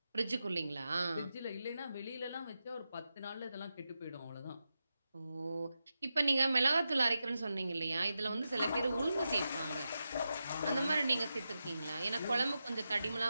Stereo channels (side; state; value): both; inverted; correlation -0.90